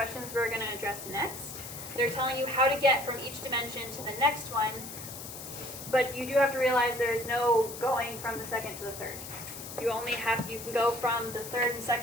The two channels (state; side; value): noise; left; hiss, 11 dB below the sound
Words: we're going to address next. They're telling you how to get from each dimension to the next one, but you do have to realize there is no going from the second to the third. You can go from the third and